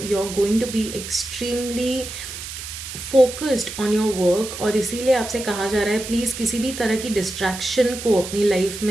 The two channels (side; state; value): right; noise; hiss, 9 dB below the sound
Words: going to be extremely focused on your work. और इसीलिए आपसे कहा जा रहा है प्लीज़ किसी भी तरह की डिस्ट्रैक्शन को अपनी लाइफ